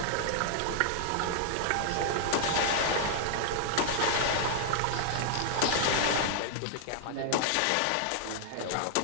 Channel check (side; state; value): both; different; correlation -0.01